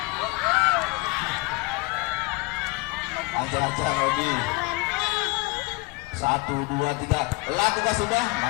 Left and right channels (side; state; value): right; quieter; 24.9 dB